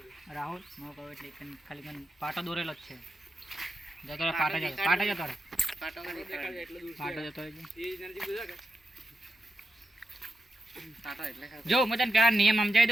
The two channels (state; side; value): normal; both; correlation 0.88